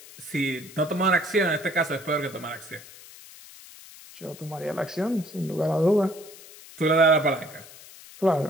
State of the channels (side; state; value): left; noise; hiss, 19 dB below the sound